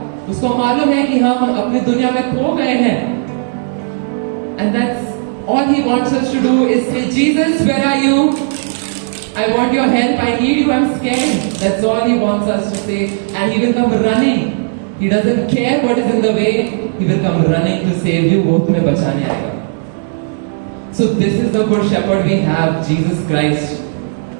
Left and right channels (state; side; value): silent; left; digital silence